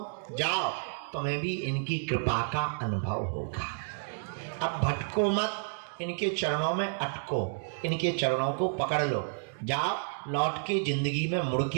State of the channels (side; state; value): left; silent; digital silence